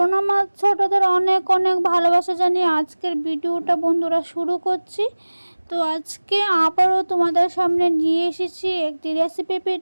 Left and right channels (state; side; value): inverted; both; correlation -1.00